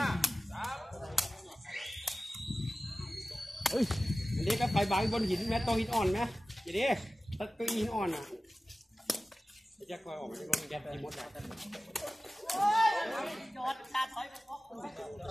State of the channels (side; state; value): both; normal; correlation 0.96